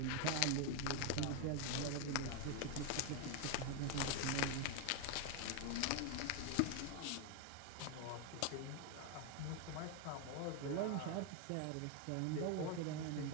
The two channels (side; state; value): both; different; correlation 0.01